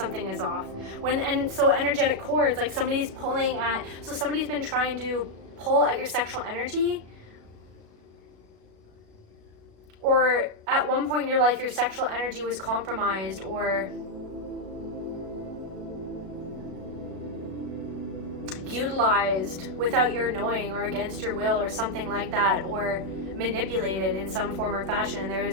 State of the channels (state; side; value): late; left; 36 ms